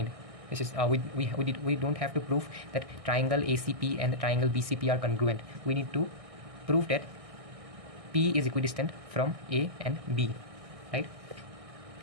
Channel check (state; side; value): late; left; 1.6 ms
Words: This is we don't have to prove that triangle ACP and the triangle BCP are congruent. We need to prove that P is equidistant from A and B, right?